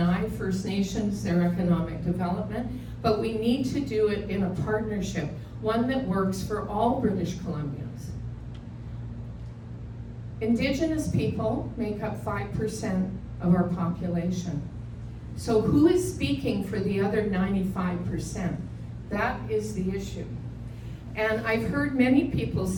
First Nations their economic development, but we need to do it in a partnership, one that works for all British Columbians. Indigenous people make up 5% of our population. So who is speaking for the other 95%? That is the issue. And I've heard many people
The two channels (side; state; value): both; identical; correlation 1.00